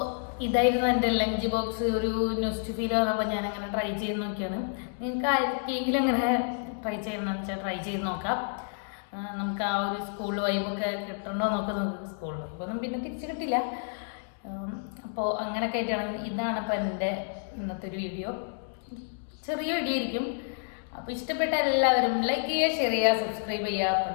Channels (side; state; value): right; silent; digital silence